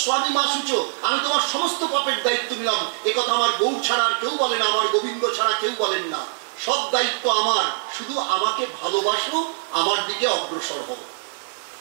স্বামী মাসুচ, আমি তোমার সমস্ত পাপের দায়িত্ব নিলাম। একথা আমার গৌর ছাড়া আর কেউ বলে না, আমার গোবিন্দ ছাড়া কেউ বলেন না। সব দায়িত্ব আমার, শুধু আমাকে ভালোবাসো, আমার দিকে অগ্রসর হও।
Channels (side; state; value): left; silent; 63 dB below the other